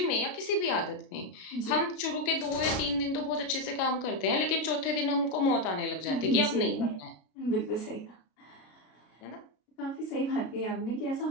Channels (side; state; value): right; late; 33 ms